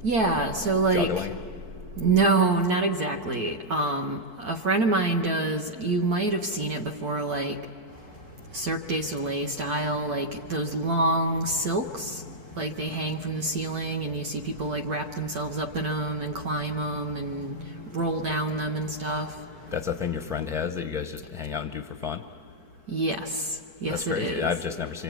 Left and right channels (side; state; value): left; late; 4.6 ms